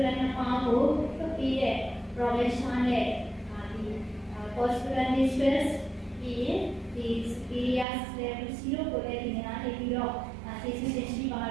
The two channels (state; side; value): drops out; left; at 7.9 s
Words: နဲ့ပေါင်းဖို့လုပ်ပြီးတဲ့ profession နဲ့ဒီ postural distress ပြီးဒီ superior level 0ကိုလည်းဒီနေ့နေပြီးတော့ကျေးဇူးတင်ရှိပါ